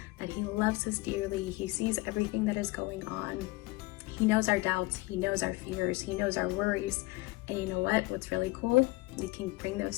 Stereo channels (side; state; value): right; quieter; 21.8 dB